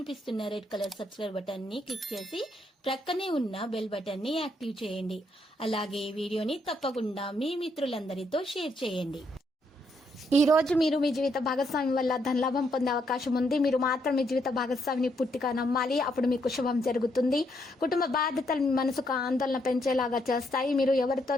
రెడ్ కలర్ సబ్స్క్రైబ్ బటన్ ని క్లిక్ చేసి ప్రక్కనే ఉన్న బెల్ బటన్ ని యాక్టివ్ చేయండి. అలాగే ఈ వీడియోని తప్పకుండా మీ మిత్రులందరితో షేర్ చేయండి. ఈ రోజు మీరు మీ జీవిత భాగస్వామి వల్ల ధనలాభం పొందే అవకాశం ఉంది. మీరు మాత్రం మీ జీవిత భాగస్వామిని పూర్తిగా నమ్మాలి. అప్పుడు మీకు శుభం జరుగుతుంది. కుటుంబ బాధ్యతలు మీ మనసుకు ఆందోళన పెంచేలాగా చేస్తాయి. మీరు ఎవరితో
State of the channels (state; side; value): normal; both; correlation 0.75